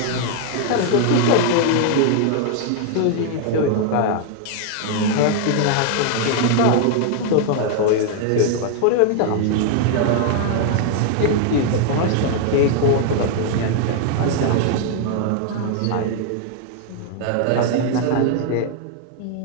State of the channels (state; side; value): different; both; correlation 0.00